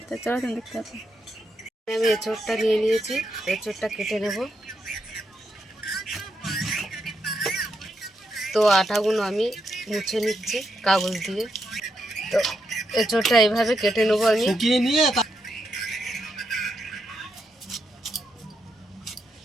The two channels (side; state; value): both; normal; correlation 0.82